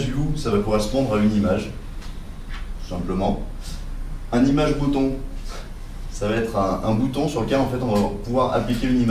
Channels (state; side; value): identical; both; correlation 1.00